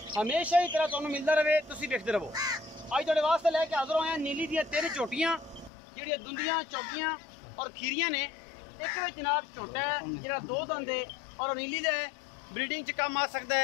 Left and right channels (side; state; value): right; drops out; at 5.7 s